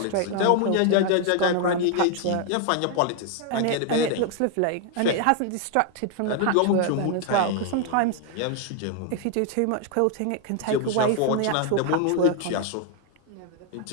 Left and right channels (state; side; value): different; both; correlation 0.00